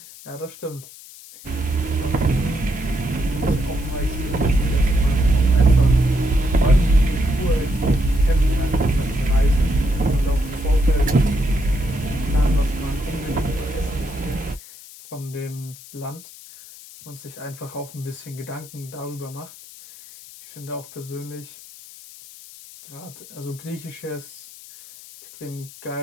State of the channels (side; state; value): left; noise; hiss, 18 dB below the sound